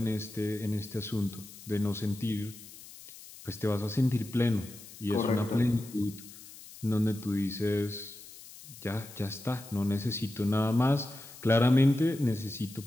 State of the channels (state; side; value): noise; left; hiss, 17 dB below the sound